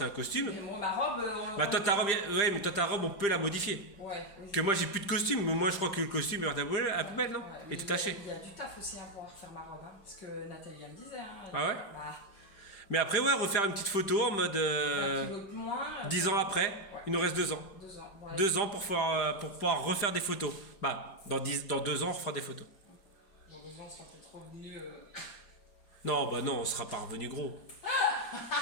un costume. Mais moi, ma robe... Bah toi ta robe, ouais mais toi ta robe on peut la modifier. Ouais, oui. Que moi j'ai plus de costume, mais moi je crois que le costume est à la poubelle, non? Ouais, Et tout taché. Il y a du taf aussi hein, pour refaire ma robe, hein, parce que Nathalie elle me disait. Hein, Ah ouais? bah, Mais après, ouais, refaire une petite photo en mode Un kilo de moins. 10 ans après. Il nous reste 2 ans. 2 ans. Ouais. 2 ans pour pouvoir refaire des photos. Bah, dans 2 ans, on refera des photos. Dans 2 ans, on sera peut-être revenu. Non, bah non, on sera pas revenu gros.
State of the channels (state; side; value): late; right; 5.0 ms